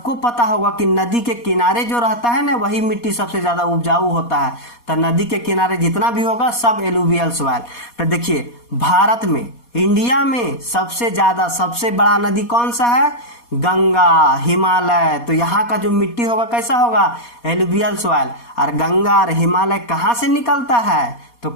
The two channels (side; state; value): right; late; 4.2 ms